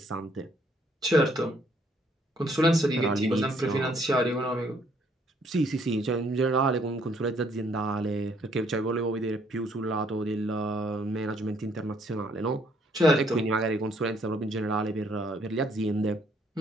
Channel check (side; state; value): both; normal; correlation 0.66